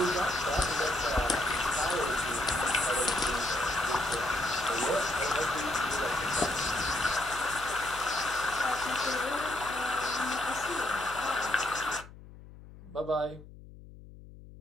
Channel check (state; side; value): noise; left; hum, 18 dB below the sound